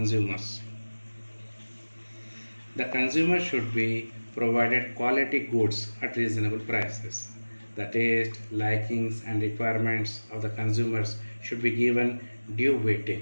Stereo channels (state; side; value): inverted; both; correlation -1.00